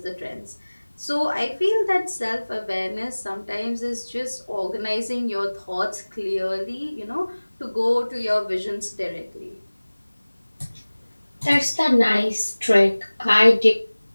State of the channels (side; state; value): both; inverted; correlation -1.00